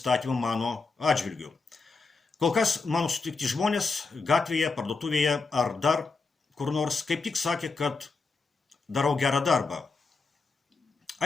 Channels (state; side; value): quieter; right; 4.2 dB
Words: mano atžvilgiu. Kol kas mano sutikti žmonės gatvėje, parduotuvėje ar dar kur nors kaip tik sakė, kad darau gerą darbą.